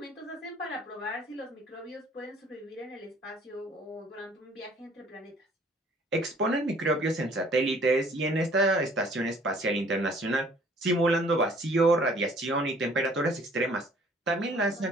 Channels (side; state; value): both; normal; correlation 0.57